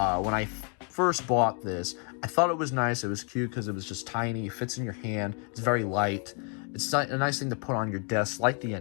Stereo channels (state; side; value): quieter; right; 39.4 dB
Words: first bought this, I thought it was nice, it was cute because it was just tiny, it fits in your hand, it's very light, it's a nice thing to put on your desk like the